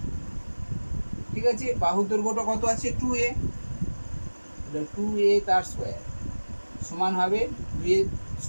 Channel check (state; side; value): inverted; both; correlation -1.00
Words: ঠিক আছে, বাহুর দৈর্ঘ্যটা কত আছে 2a, 2a তার স্কয়ার সমান হবে 2a